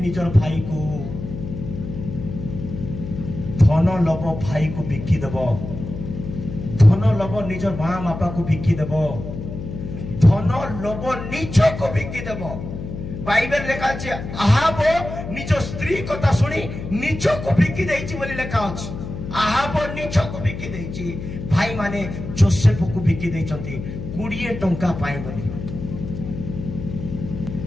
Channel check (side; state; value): left; noise; hum, 8 dB below the sound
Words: भाई को धन लोभ भाई को बिकी देबो धन लोभ निज मां बापा को बिकी देबो धन लोभ निज को बिकी देबो बाइबल लेखा अछि आहाब निज स्त्री कथा सुनी निज को बिकी देछि बोली लेखा अछि आहाब निज को बिकी देछि भाई माने जोसेफ को बिकी देछंती 20 टंका पाए बोली